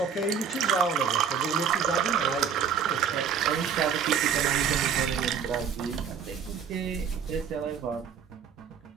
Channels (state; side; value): quieter; left; 7.1 dB